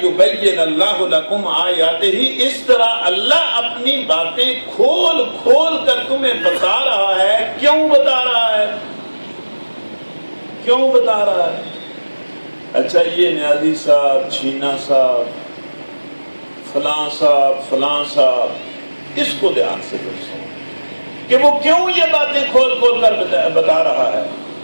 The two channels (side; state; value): both; inverted; correlation -1.00